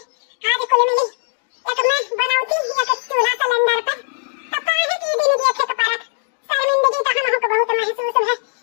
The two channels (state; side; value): silent; right; digital silence